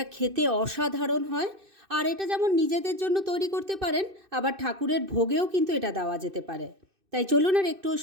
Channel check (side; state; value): left; late; 2.6 ms